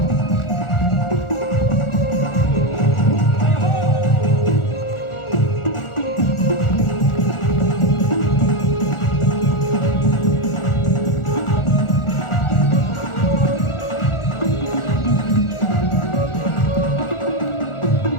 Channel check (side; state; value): right; late; 1.4 ms